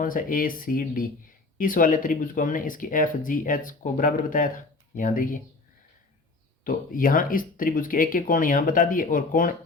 सा ए सी डी, इस वाले त्रिभुज को हमने इसकी एफ जी एच को बराबर बताया था। यहाँ देखिए, तो यहाँ इस त्रिभुज के एक एक कोण यहाँ बता दिए, और कोण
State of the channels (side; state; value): right; quieter; 3.5 dB